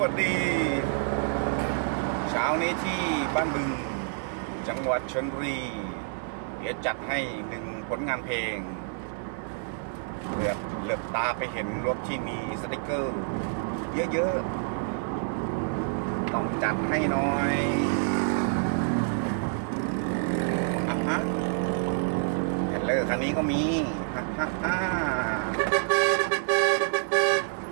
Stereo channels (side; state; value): left; silent; digital silence